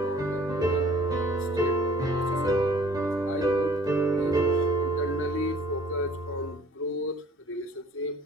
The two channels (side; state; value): both; normal; correlation 0.53